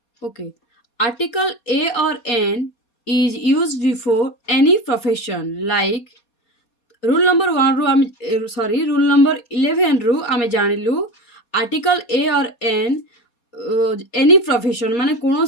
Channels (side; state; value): right; late; 4.2 ms